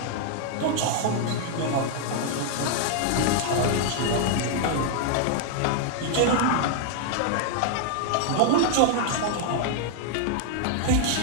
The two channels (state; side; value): different; both; correlation 0.00